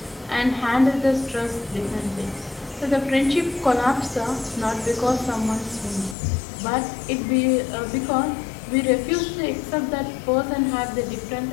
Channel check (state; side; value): drops out; right; at 6.2 s